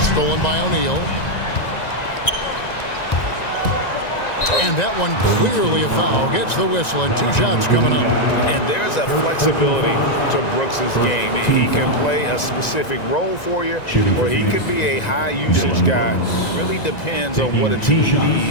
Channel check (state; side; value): late; right; 1.9 ms